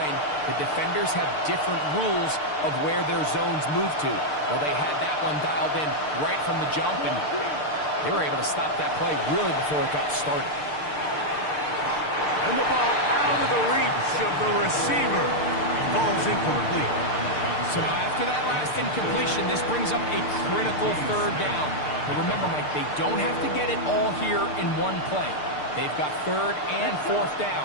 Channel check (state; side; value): late; right; 6.7 ms